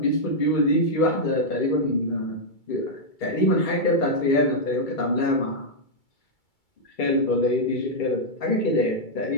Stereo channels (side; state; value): right; late; 2.3 ms